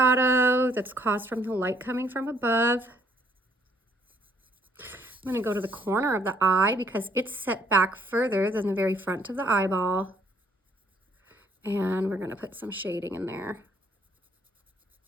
that's caused from the light coming from above. I'm going to go to the corner of the eye because it's set back further than the very front of the eyeball. And we're going to put some shading in there.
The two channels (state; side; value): normal; both; correlation 0.65